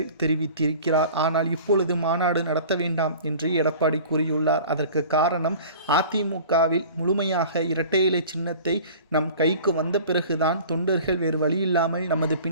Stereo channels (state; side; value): inverted; both; correlation -0.43